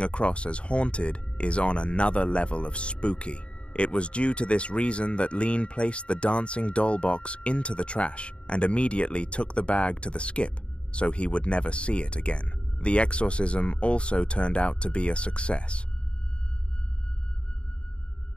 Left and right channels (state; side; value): late; right; 0.058 ms